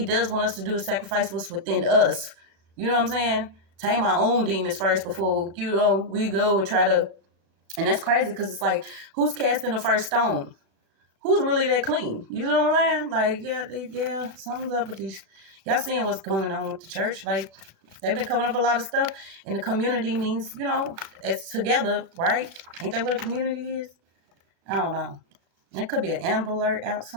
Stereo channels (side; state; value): left; late; 36 ms